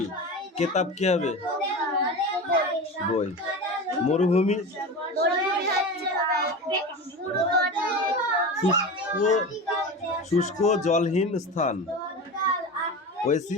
কিতাব কি হবে বই। মরুভূমি শুষ্ক জলহীন স্থান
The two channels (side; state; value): both; normal; correlation 0.28